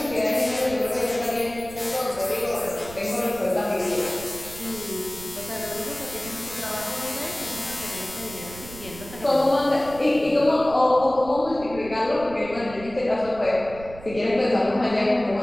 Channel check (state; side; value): noise; right; rumble, 16 dB below the sound